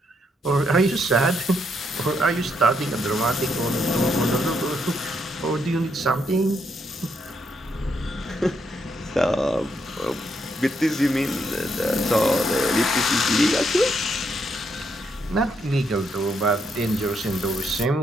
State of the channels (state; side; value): normal; both; correlation 0.76